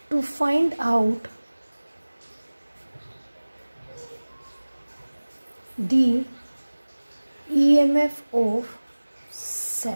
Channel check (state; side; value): inverted; both; correlation -1.00